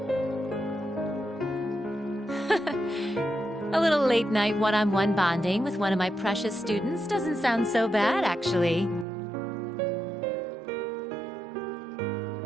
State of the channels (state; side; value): drops out; left; at 9.1 s